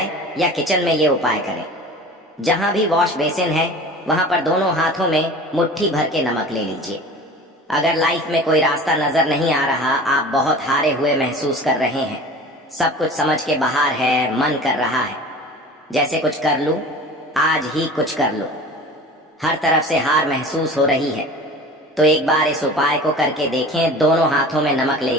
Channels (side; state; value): both; normal; correlation 0.39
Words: या किचन में ये उपाय करें। जहां भी वॉश बेसिन है वहां पर दोनों हाथों में मुट्ठी भर के नमक ले लीजिए। अगर लाइफ में कोई रास्ता नजर नहीं आ रहा, आप बहुत हारे हुए महसूस कर रहे हैं, सब कुछ समझ के बाहर है, मन कर रहा है जैसे कुछ कर लूं, आज ही कुछ कर लूं, हर तरफ से हार महसूस हो रही है, तो एक बार इस उपाय को करके देखें। दोनों हाथों में नमक